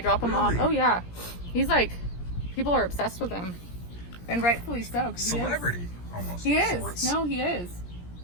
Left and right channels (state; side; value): late; right; 17 ms